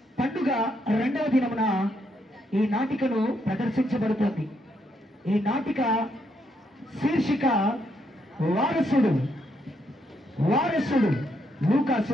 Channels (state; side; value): normal; both; correlation 0.76